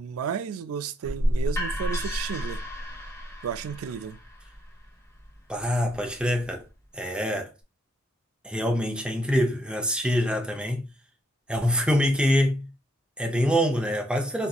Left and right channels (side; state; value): both; normal; correlation 0.75